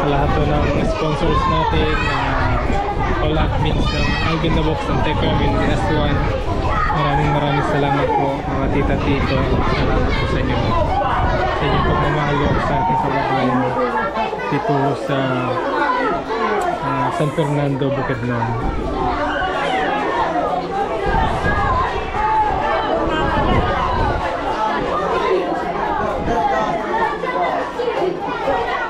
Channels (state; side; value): identical; both; correlation 1.00